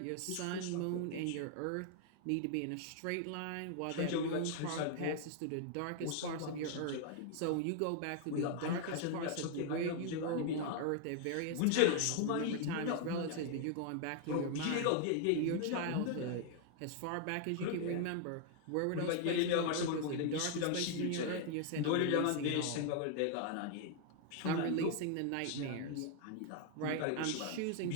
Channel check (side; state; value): both; different; correlation 0.00